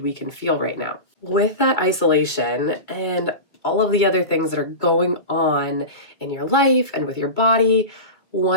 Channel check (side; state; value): right; late; 2.1 ms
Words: we can feel right now. With that isolation and all of the other things that are going on in your life and with your body,